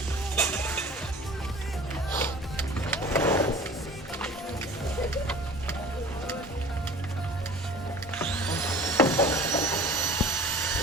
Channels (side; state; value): both; normal; correlation 0.44